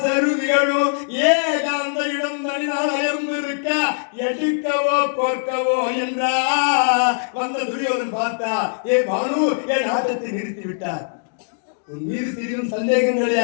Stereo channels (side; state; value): right; silent; digital silence